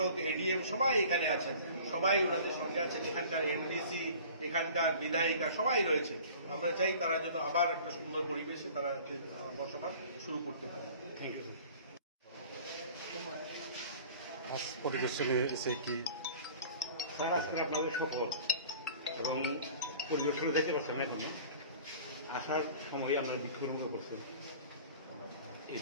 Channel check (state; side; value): inverted; both; correlation -0.44